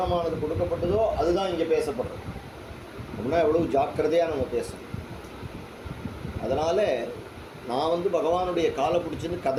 கொடுக்கப்பட்டதோ அதுதான் இங்கே பேசப்படுறது. அப்படின்னா எவ்வளவு ஜாக்கிரதையாக நம்ம பேசணும். அதனால் நான் வந்து பகவானுடைய காலை பிடிச்சின்னு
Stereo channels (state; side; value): identical; both; correlation 1.00